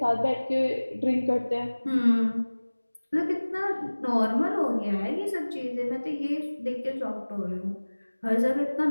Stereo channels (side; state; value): both; inverted; correlation -1.00